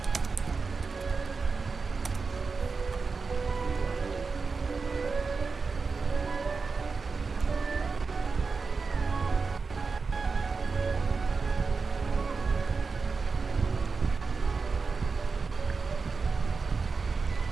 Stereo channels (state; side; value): quieter; left; 4.6 dB